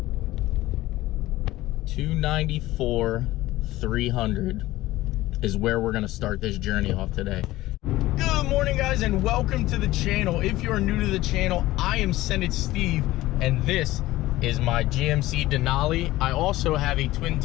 294, 300 is where we're gonna start this journey off today. Good morning, guys, and welcome to the channel. If you are new to the channel, I am SendIt Steve, and this is my GMC Denali. I also have a twin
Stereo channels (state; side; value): quieter; right; 17.0 dB